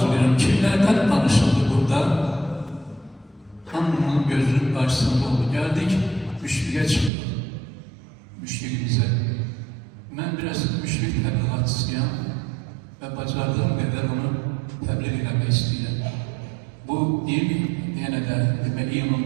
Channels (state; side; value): drops out; left; at 7.1 s